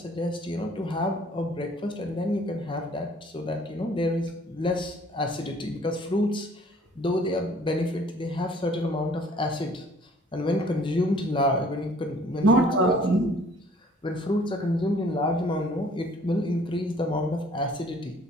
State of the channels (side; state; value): both; normal; correlation 0.56